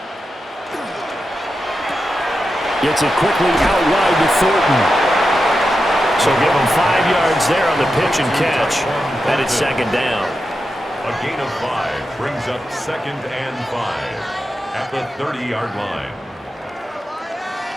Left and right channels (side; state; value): both; normal; correlation 0.89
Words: Gets it quickly out wide to Thornton. So give him 5 yards there on the pitch and catch. And it's 2nd down. A gain of 5 brings up 2nd and 5 at the 30-yard line.